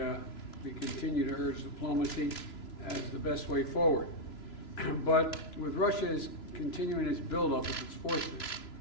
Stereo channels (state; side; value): late; right; 3.0 ms